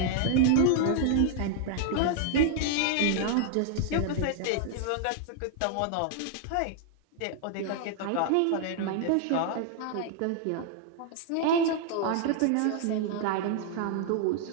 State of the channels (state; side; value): different; both; correlation 0.00